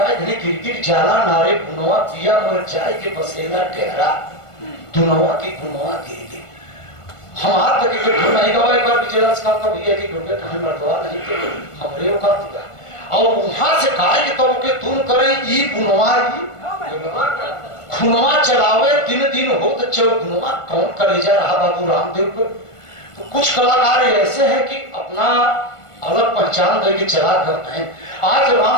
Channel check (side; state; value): right; late; 1.5 ms